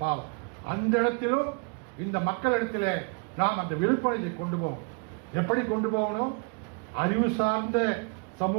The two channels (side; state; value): left; quieter; 35.7 dB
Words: பாவம். அந்த இடத்திலும் இந்த மக்களிடத்தில் நாம் அந்த விழிப்புணர்வை கொண்டு போகணும். எப்படி கொண்டு போகணும்? அறிவு சார்ந்த